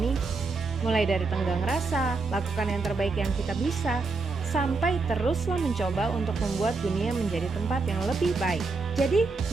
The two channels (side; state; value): left; quieter; 4.0 dB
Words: Mulai dari tenggang rasa, lakukan yang terbaik yang kita bisa, sampai teruslah mencoba untuk membuat dunia menjadi tempat yang lebih baik. Jadi,